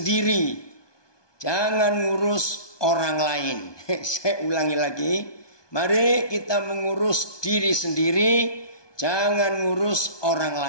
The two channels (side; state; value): right; late; 1.2 ms